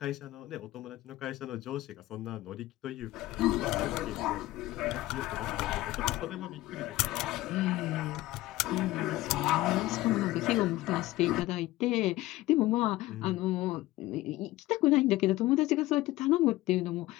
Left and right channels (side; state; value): right; quieter; 17.4 dB